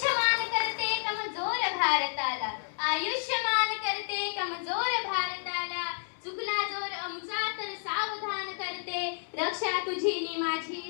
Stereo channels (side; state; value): right; silent; digital silence